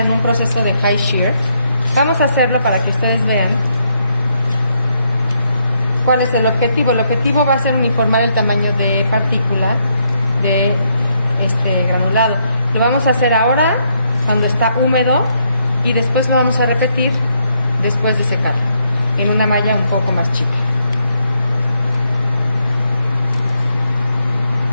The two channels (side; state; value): both; inverted; correlation -0.75